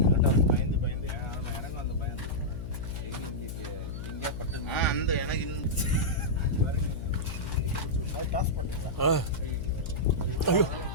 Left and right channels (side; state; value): left; noise; hum, 7 dB below the sound